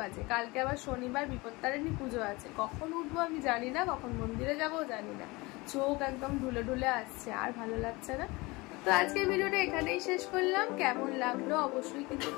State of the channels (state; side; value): quieter; right; 23.6 dB